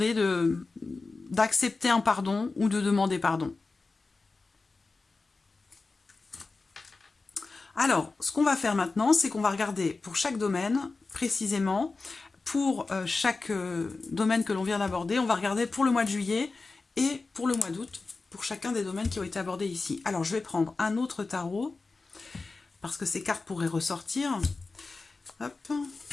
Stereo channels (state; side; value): quieter; right; 3.8 dB